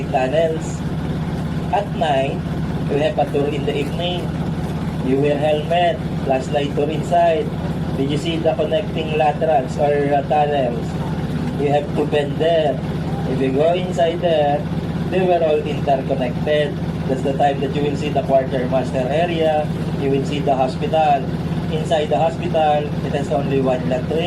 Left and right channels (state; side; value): identical; both; correlation 1.00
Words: tunnels. At night, we have a tour in the evening. You wear helmet, flashlight tour inside. Did you see the connecting laterals or tunnels? You have to bend there. If you go inside there, they were all interconnected. That's the time that you will see the quartermaster area. You will see the hospital. Inside the hospital, it has only one